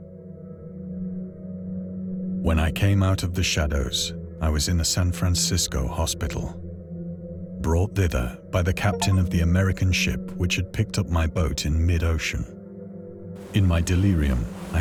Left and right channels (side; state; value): both; identical; correlation 1.00